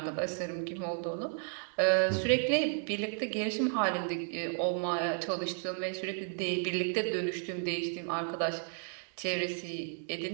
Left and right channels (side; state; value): left; silent; 56 dB below the other